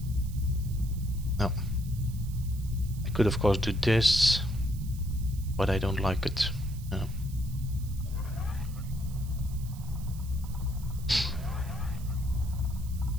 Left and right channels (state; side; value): noise; right; hiss, 20 dB below the sound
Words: No. I could of course do this, but I don't like it. No.